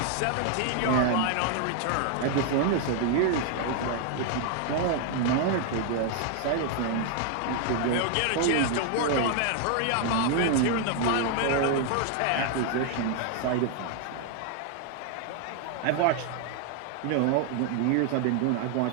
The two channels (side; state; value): both; different; correlation 0.00